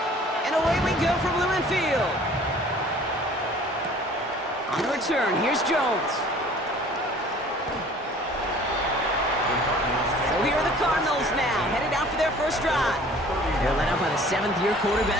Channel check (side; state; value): both; normal; correlation 0.50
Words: And away we go from Lumen Field. On the return, here's Jones. So here are the Cardinals now, headed out for their first drive. They're led out by the seventh-year